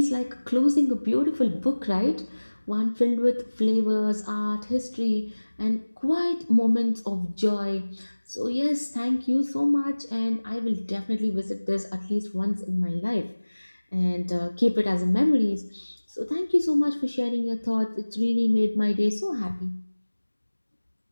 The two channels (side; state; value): both; inverted; correlation -1.00